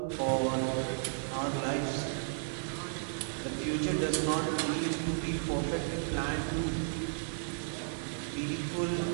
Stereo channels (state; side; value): silent; left; digital silence